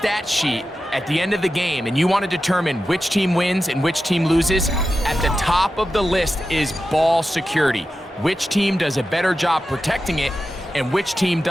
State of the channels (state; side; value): normal; both; correlation 0.92